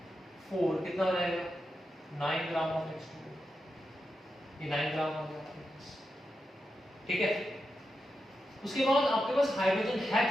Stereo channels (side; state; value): both; normal; correlation 0.88